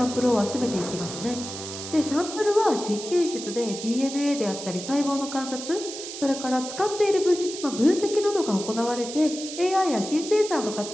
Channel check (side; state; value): right; noise; hiss, 9 dB below the sound